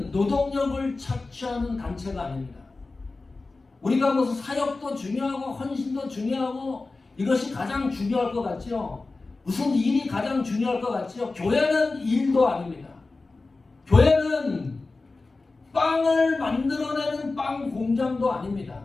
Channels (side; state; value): right; quieter; 3.6 dB